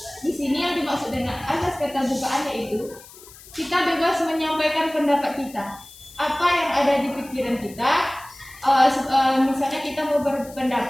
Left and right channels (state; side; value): noise; left; hiss, 20 dB below the sound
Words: Di sini yang dimaksud dengan azas keterbukaan yaitu kita bebas menyampaikan pendapat kita. Apa yang ada di pikiran kita, misalnya kita mau